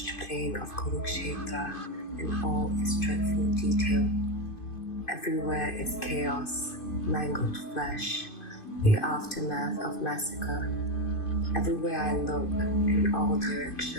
plain of Kurukshetra in all its dreadful detail. Everywhere is chaos, mangled flesh, the aftermath of massacre. Everywhere I look, in all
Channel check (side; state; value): right; late; 2.5 ms